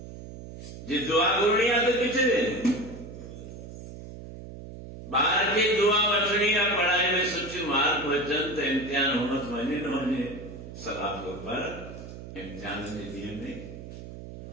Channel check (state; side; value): noise; right; hum, 12 dB below the sound